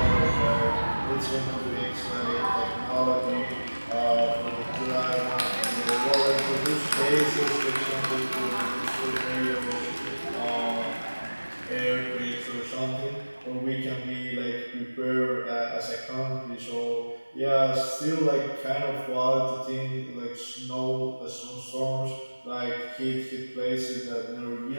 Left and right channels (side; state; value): both; inverted; correlation -1.00